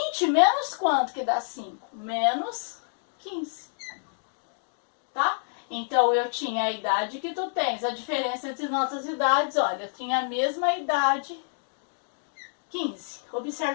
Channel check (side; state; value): right; silent; digital silence